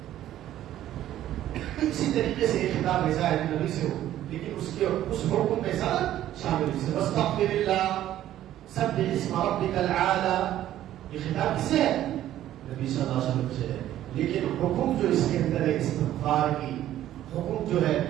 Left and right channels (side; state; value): left; quieter; 12.7 dB